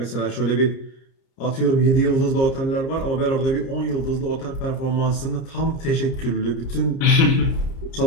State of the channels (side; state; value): right; late; 30 ms